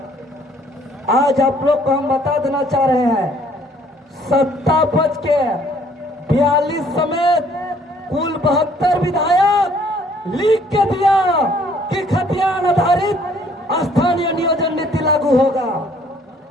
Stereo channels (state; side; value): normal; both; correlation 0.61